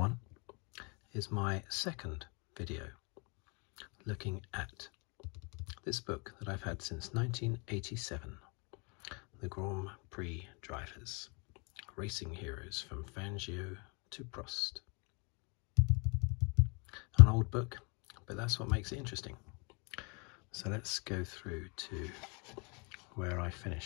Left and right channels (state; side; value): quieter; right; 32.6 dB